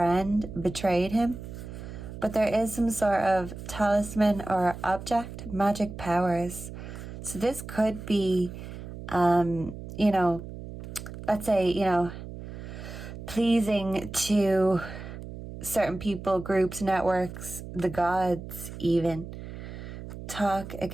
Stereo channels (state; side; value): noise; right; hum, 11 dB below the sound